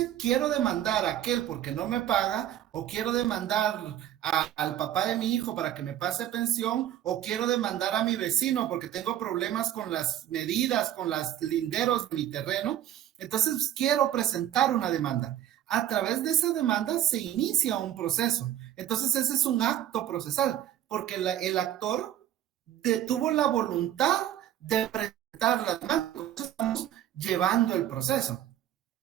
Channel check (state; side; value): quieter; left; 11.8 dB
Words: quiero demandar a aquel porque no me paga, o quiero demandar al papá de mi hijo para que me pase pensión, o quiero demandar a mi vecino porque tengo problemas con las medidas, con los linderos de mi terreno. Entonces, quiero presentar una demanda. A través de esa demanda se inicia un proceso. Entonces, ese es un acto procesal, porque el actor tuvo la voluntad de presentar la demanda. Entonces, estamos llevando el proceso,